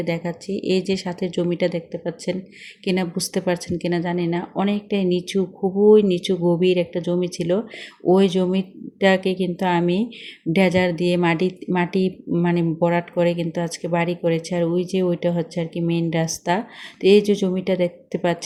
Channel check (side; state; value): both; identical; correlation 1.00